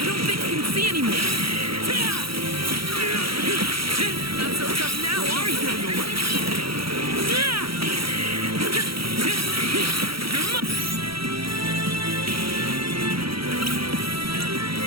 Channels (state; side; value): late; left; 0.75 ms